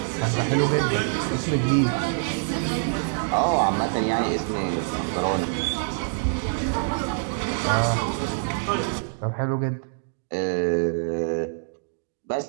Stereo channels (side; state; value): left; silent; digital silence